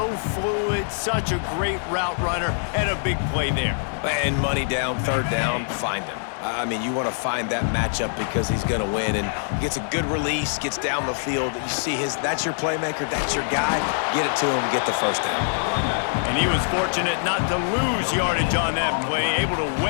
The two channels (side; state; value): right; silent; digital silence